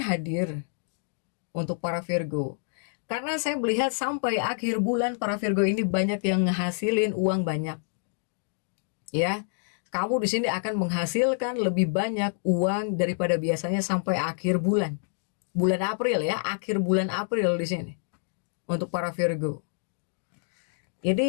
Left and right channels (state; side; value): silent; right; digital silence